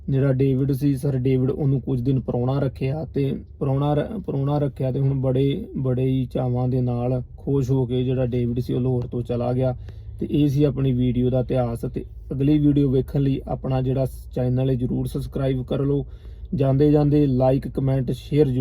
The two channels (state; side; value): identical; both; correlation 1.00